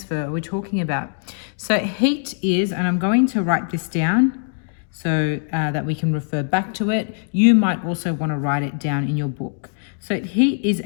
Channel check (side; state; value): right; silent; 61 dB below the other